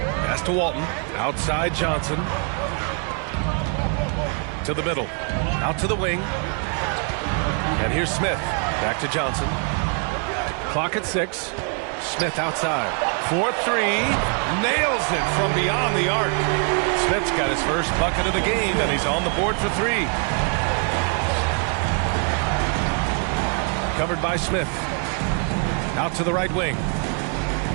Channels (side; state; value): left; quieter; 39.5 dB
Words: Pass to Walton. Outside Johnson. To the middle. Out to the wing. And here's Smith. Back to Johnson. Clock at 6. Smith outside. 4-3. Nails it from beyond the arc. Smith's got his first bucket of the game, and he's on the board for 3. Covered by Smith. Out to the right wing.